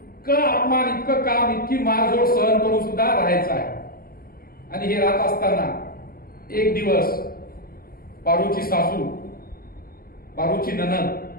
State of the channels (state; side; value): late; right; 0.43 ms